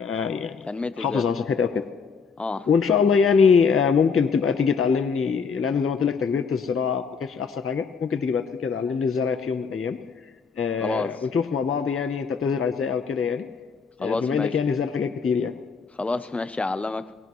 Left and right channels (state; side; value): quieter; right; 5.6 dB